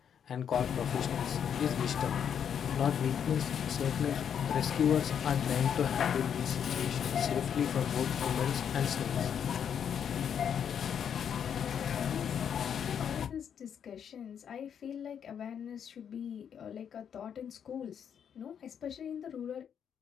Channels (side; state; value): right; quieter; 8.2 dB